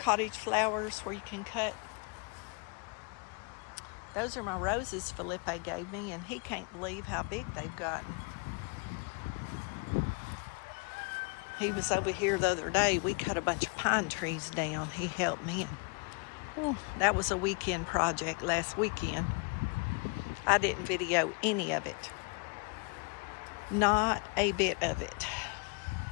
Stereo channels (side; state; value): right; quieter; 32.1 dB